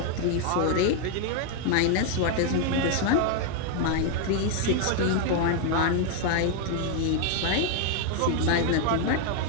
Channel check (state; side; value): different; both; correlation 0.01